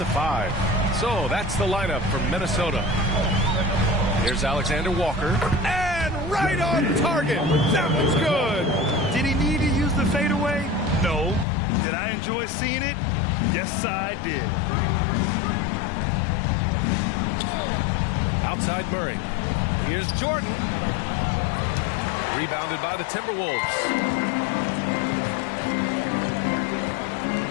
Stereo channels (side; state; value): right; drops out; at 11.5 s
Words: 5. So that's the lineup for Minnesota. Here's Alexander-Walker, and right on target. That was good. Did he need to use the fadeaway? No. Did I enjoy seeing it? Yes, I did. Outside Murray. Here's Jordan. Rebounded by the Timberwolves.